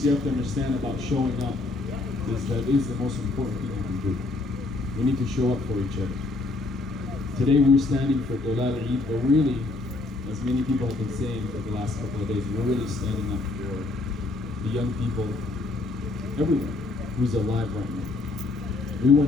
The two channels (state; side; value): quieter; right; 3.2 dB